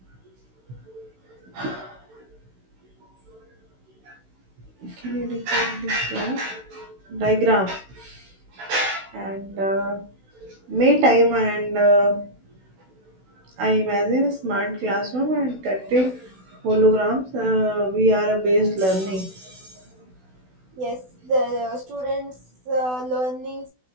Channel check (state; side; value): late; left; 16 ms